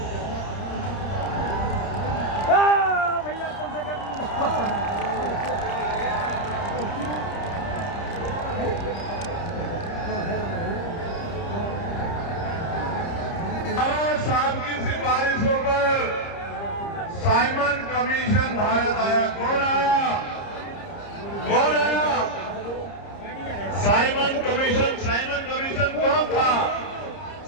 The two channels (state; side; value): late; right; 30 ms